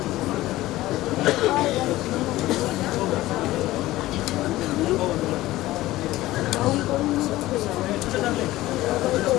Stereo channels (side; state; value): right; quieter; 16.9 dB